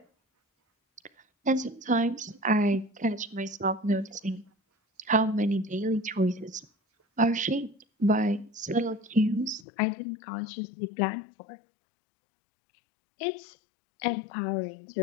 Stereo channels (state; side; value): drops out; right; at 9.7 s